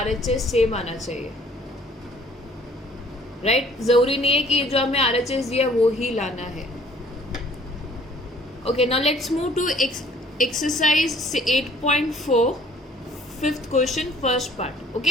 RHS same आना चाहिए, राइट. जरूरी नहीं है कि जो हमें RHS दिया वो ही लाना है. Okay, now let's move to exercise 8.4 fifth question first part.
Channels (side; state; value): both; normal; correlation 0.57